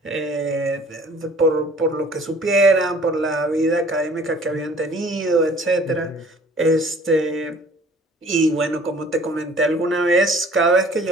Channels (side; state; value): both; normal; correlation 0.51